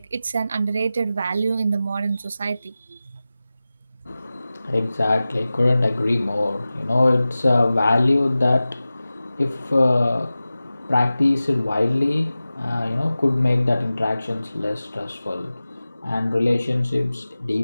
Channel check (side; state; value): both; inverted; correlation -0.96